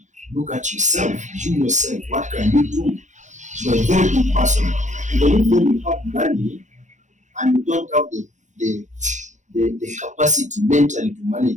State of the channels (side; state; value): left; late; 0.35 ms